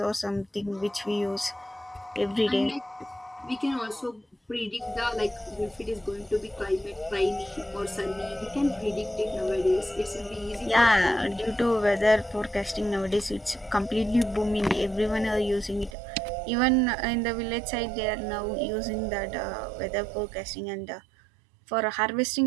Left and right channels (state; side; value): drops out; left; at 15.9 s